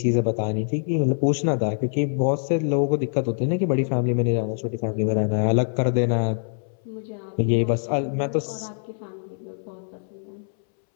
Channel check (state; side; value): silent; right; 62 dB below the other